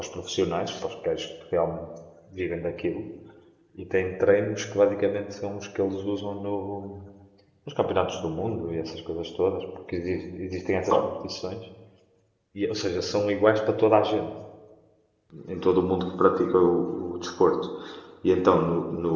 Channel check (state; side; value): identical; both; correlation 1.00